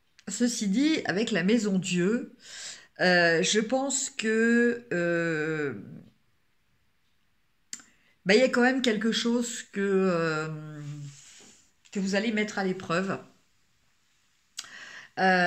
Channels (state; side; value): identical; both; correlation 1.00